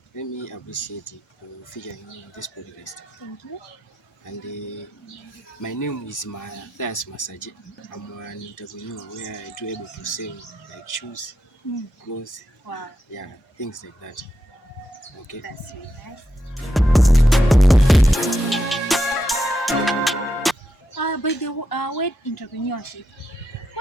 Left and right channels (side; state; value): both; normal; correlation 0.84